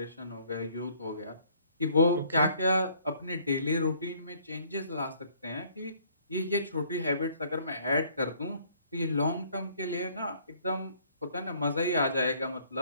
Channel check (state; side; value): inverted; both; correlation -0.61